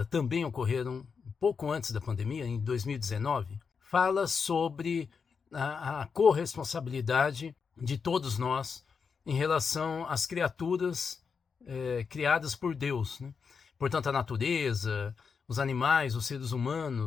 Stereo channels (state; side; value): quieter; right; 5.8 dB